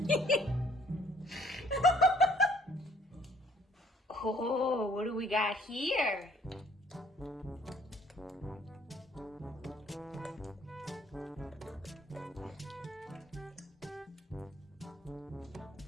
Oh, what do we got here?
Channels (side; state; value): both; normal; correlation 0.60